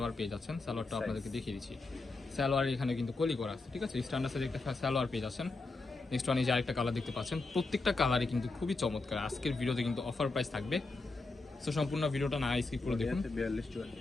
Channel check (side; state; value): right; quieter; 3.5 dB